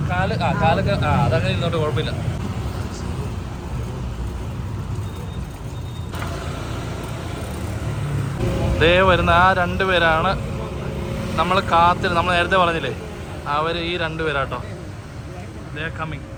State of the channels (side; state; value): both; identical; correlation 1.00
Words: കാലൊക്കെ അതങ്ങനെ ഇരുന്നോട്ട് കുഴപ്പമില്ല. ദേ വരുന്ന ആ 2 പേരാണ് നമ്മൾ നമ്മൾ നേരത്തെ പറഞ്ഞില്ലേ, അവർ ഈ 2 പേരാട്ടോ. ദേ കമ്മിങ്.